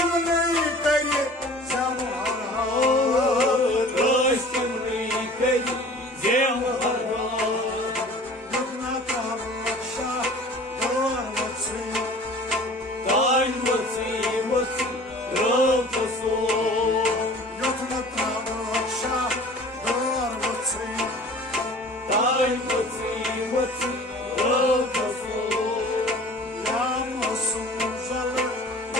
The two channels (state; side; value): normal; both; correlation 0.45